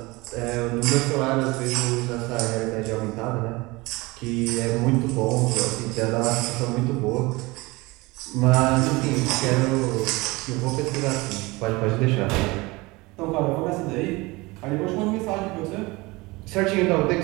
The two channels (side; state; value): left; quieter; 23.1 dB